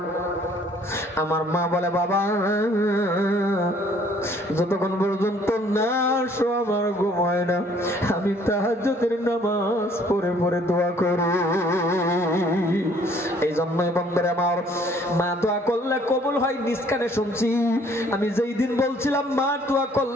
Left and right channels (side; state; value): both; normal; correlation 0.59